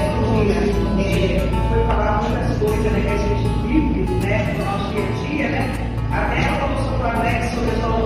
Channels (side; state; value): both; identical; correlation 1.00